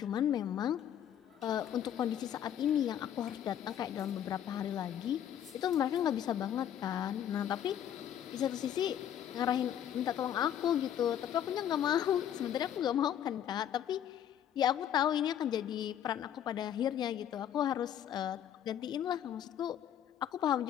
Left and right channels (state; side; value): quieter; right; 10.1 dB